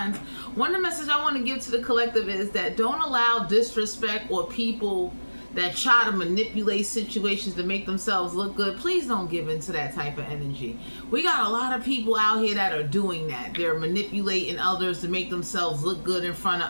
One of the messages I want to give to the collective is that don't allow disrespect or people that try to manipulate situations to make themselves look good. Please don't give into that type of energy. We got a lot of people out here that are doing that. They're manipulating others to make themselves look good in front of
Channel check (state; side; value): inverted; both; correlation -1.00